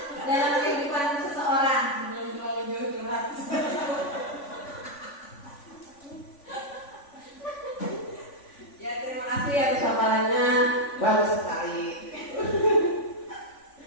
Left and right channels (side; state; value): right; late; 3.5 ms